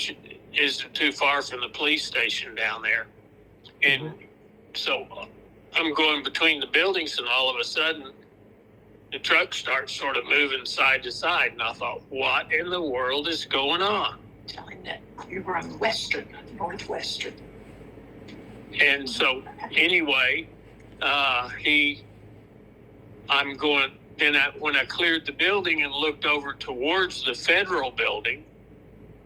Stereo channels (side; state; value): both; identical; correlation 1.00